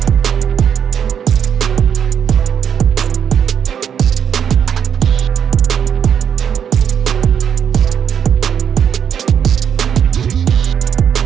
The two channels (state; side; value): quieter; left; 8.2 dB